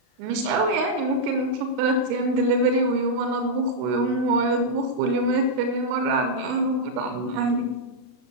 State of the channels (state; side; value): late; left; 32 ms